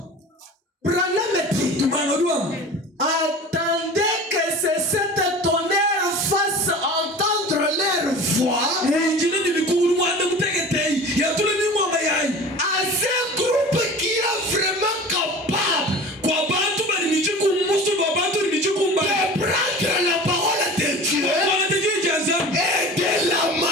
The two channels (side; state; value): both; normal; correlation 0.38